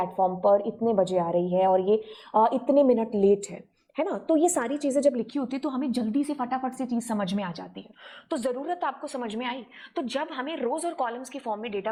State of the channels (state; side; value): identical; both; correlation 1.00